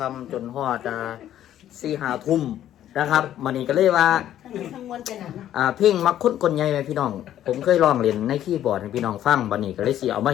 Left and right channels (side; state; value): right; quieter; 11.7 dB